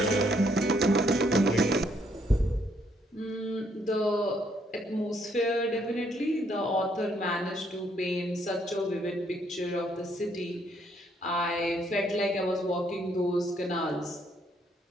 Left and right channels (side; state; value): both; normal; correlation 0.70